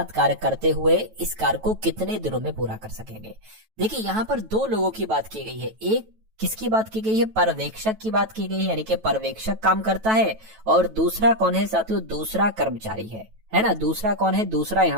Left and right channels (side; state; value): left; late; 9.2 ms